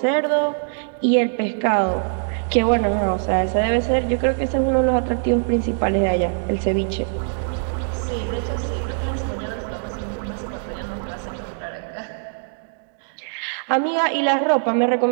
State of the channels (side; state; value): left; silent; digital silence